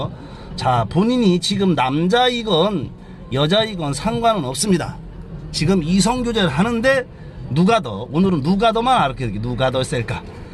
자, 본인이 지금 남자이건 여자이건 상관은 없습니다. 지금 이성교제를 하는데 누가 더, 오늘은 누가 더만 알게, 누가 더 셀까?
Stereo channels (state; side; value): identical; both; correlation 1.00